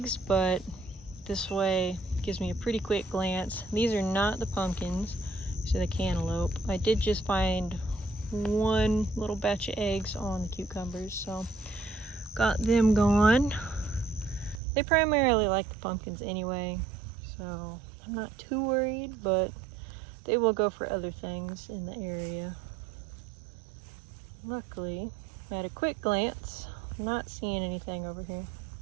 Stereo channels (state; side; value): drops out; left; at 14.6 s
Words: but this way gives me a pretty quick glance. These are not the pumpkins, so the cantaloupe. I did just find one little batch of eggs on the cucumbers, so got them gone. They primarily like the pumpkins anyway, so I'm not too worried, but they will go for other things in the area. Luckily, at a quick glance, I'm not seeing anything over here.